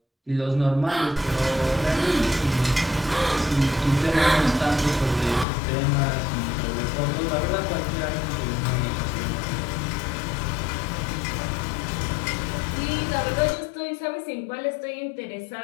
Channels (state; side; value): drops out; right; at 5.5 s